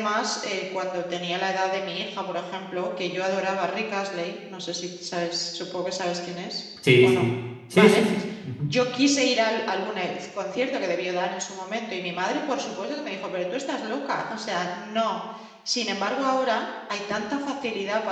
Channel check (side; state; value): both; identical; correlation 1.00